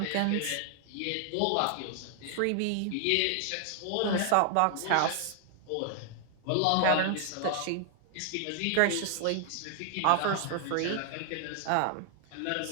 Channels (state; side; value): different; both; correlation 0.00